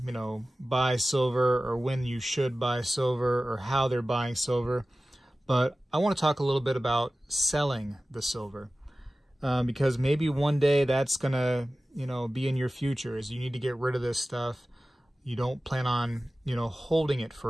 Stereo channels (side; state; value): both; normal; correlation 0.96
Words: buy silver, or when you should buy silver, or how they're buying silver. But I want to talk a little bit about selling the silver, because maybe one day that's gonna, be in your future. Is you need to get rid of this stuff. You don't plan on, holding it